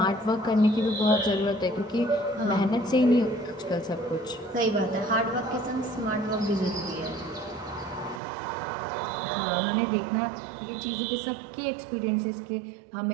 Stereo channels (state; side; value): drops out; left; at 8.2 s